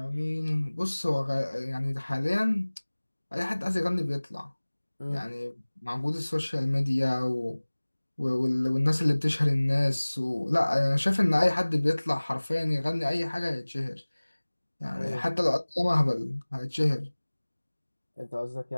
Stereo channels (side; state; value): both; inverted; correlation -1.00